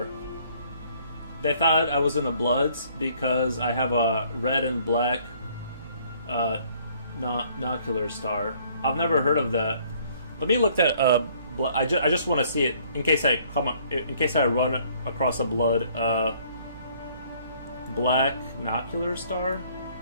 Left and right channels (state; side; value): inverted; both; correlation -0.61